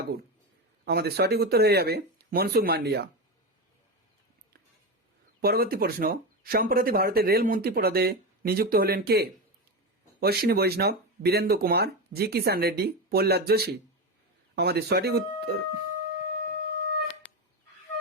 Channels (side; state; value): both; normal; correlation 0.17